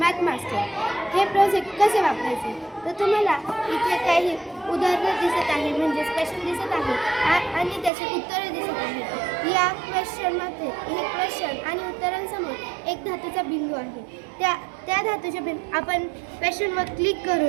मास्टर. हे प्रोजेक्ट कसे वापरायचे तर तुम्हाला इथे काही उदाहरणं दिसत आहे, म्हणजे क्वेश्चन दिसत आहे आणि त्याचे उत्तरं दिसत आहे. या क्वेश्चनमध्ये हे क्वेश्चन आणि उत्तरांसमोर एक धातूचा बिंदू आहे. त्या धातूच्या बिंदू आपण क्वेश्चनवर क्लिक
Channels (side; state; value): left; drops out; at 7.9 s